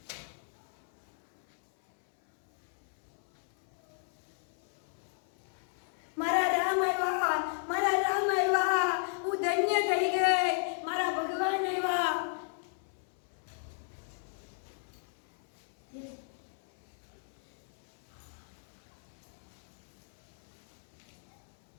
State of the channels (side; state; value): right; silent; 55 dB below the other